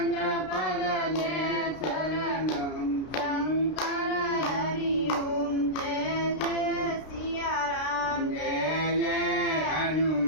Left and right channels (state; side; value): late; right; 32 ms